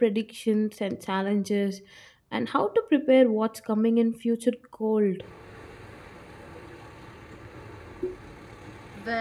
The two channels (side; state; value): both; identical; correlation 1.00